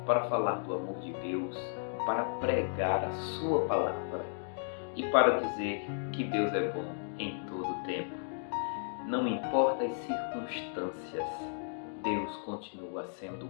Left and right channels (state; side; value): silent; right; digital silence